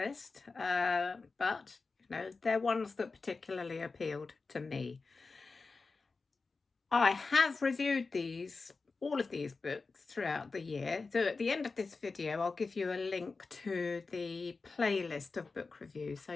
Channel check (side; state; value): right; quieter; 4.1 dB